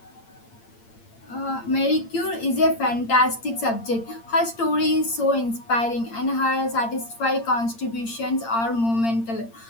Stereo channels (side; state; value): right; late; 8.7 ms